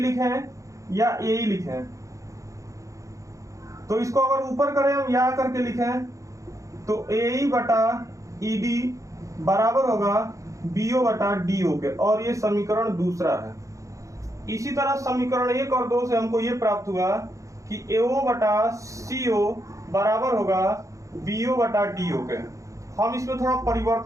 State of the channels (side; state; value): left; late; 0.15 ms